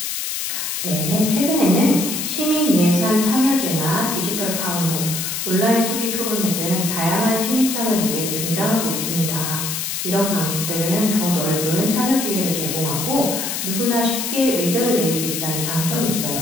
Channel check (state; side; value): noise; left; hiss, 3 dB below the sound